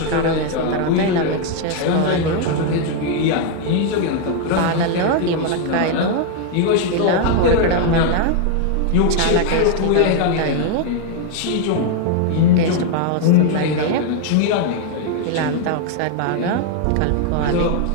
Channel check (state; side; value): different; both; correlation 0.01